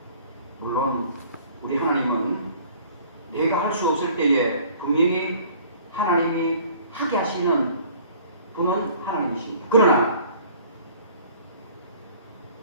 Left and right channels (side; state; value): both; inverted; correlation -0.52